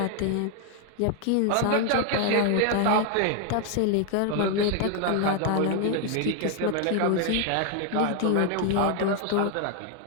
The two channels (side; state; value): both; different; correlation 0.01